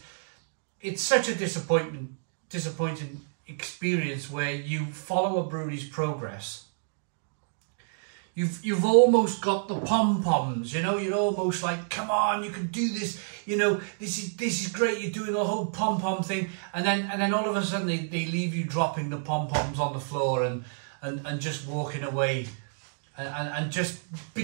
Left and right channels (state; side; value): silent; left; digital silence